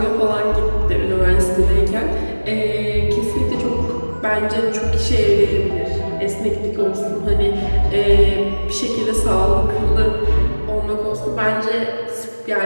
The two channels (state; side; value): inverted; both; correlation -1.00